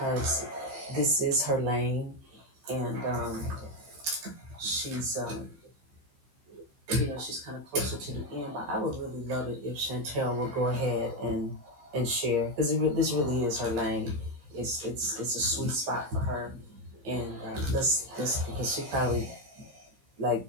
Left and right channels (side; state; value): left; late; 15 ms